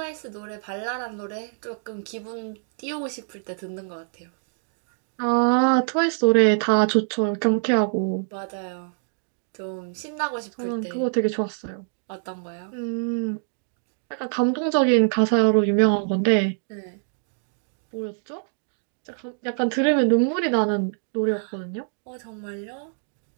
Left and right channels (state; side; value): silent; left; digital silence